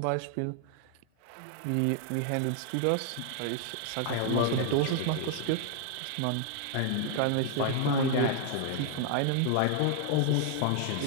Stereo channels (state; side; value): different; both; correlation 0.00